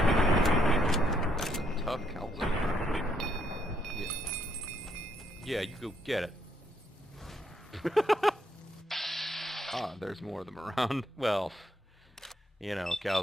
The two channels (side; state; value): both; normal; correlation 0.73